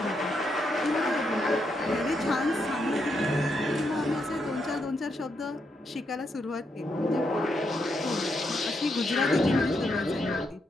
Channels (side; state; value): both; normal; correlation 0.80